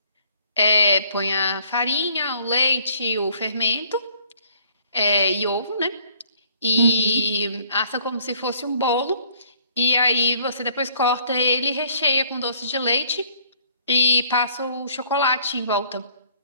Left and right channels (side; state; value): both; inverted; correlation -0.60